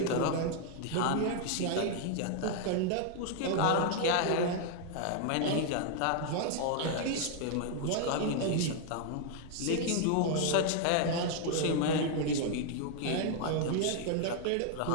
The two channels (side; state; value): both; different; correlation 0.00